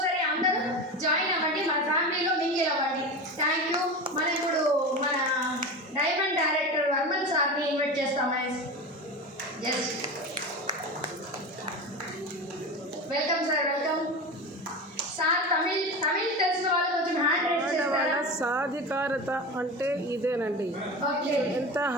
అందరూ జాయిన్ అవ్వండి, మన ఫ్యామిలీలో మింగిల్ అవ్వండి. Thank you. మనం ఇప్పుడు మన డైమండ్ డైరెక్టర్ వర్మన్ సార్ని ఇన్వైట్ చేస్తాం. Yes, welcome sir, welcome sir. Tamil తెలిసిన వాళ్ళు కొంచెం హ్యాండ్ రైజ్ చేస్తారా? సాధికారత అంటే ఇదేనండి. ఎంత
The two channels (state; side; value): normal; both; correlation 0.26